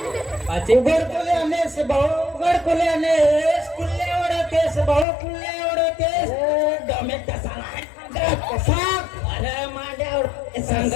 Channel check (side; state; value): right; drops out; at 5.1 s